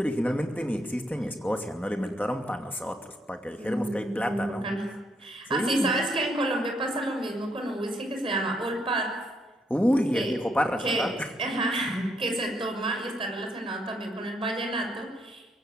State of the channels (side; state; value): both; normal; correlation 0.75